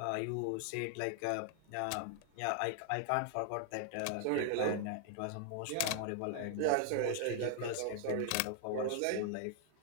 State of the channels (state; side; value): different; both; correlation 0.00